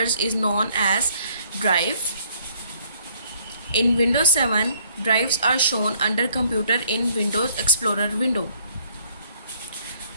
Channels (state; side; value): inverted; both; correlation -0.62